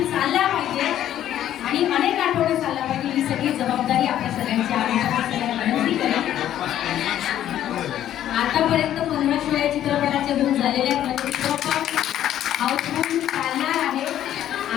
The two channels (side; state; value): right; quieter; 11.6 dB